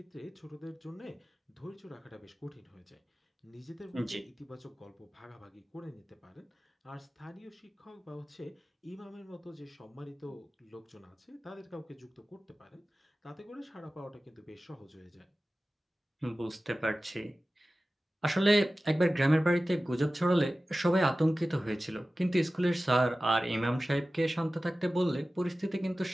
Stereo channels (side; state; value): both; normal; correlation 0.96